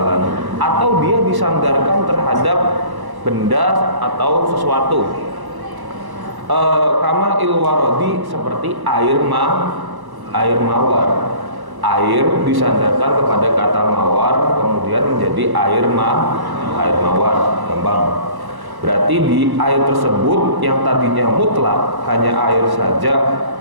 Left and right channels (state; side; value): late; left; 1.1 ms